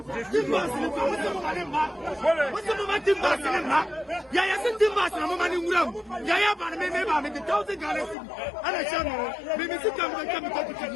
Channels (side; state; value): right; drops out; at 8.2 s